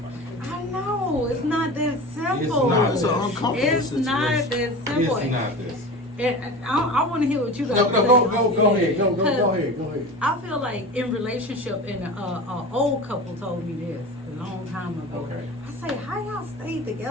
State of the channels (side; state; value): both; normal; correlation 0.32